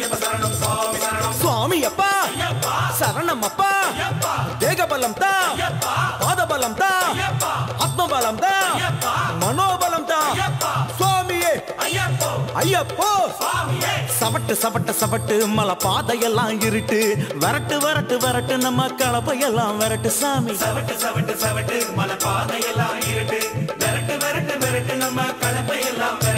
சரணம் சுவாமி சரணம். சுவாமி அப்பா சரணம் அப்பா. தேகபலம் தா, பாதபலம் தா, ஆத்மபலம் தா, மனோபலம் தா. சுவாமியே ஐயப்போ. சவட்டு சவட்டு சவட்டு மலை பாதையெல்லாம் இருட்டு. வரட்டு வரட்டு வரட்டு நம்ம கலப்பையெல்லாம் வரட்டு சாமி. சவட்டு சவட்டு சவட்டு மலை பாதையெல்லாம் இருட்டு. வரட்டு வரட்டு வரட்டு நம்ம கலப்பையெல்லாம்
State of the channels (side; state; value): both; identical; correlation 1.00